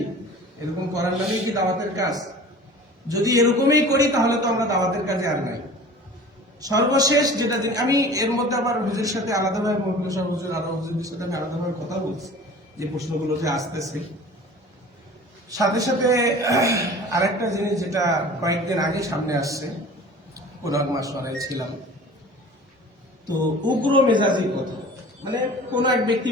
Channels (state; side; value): normal; both; correlation 0.42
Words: এরকম করার নামেই কি দাওয়াতের কাজ? যদি এরকমই করি, তাহলে তো আমরা দাওয়াতের কাজে আর নাই। সর্বশেষ যেটা আমি এর মধ্যে আবার হুজুরের সাথে আলাদাভাবে, মহকুমা সাহেব হুজুর, আরো হুজুরদের সাথে আমি আলাদাভাবে কথা বলছি, যে প্রশ্নগুলো যে আসতেছে। সাথে সাথে আরেকটা জিনিস যেটা কয়েকদিন আগে সামনে আসছে, কোরআন মাসওয়ারায় ছিলাম, তো উগ্র মেজাজি কথা, মানে কোন এক ব্যক্তি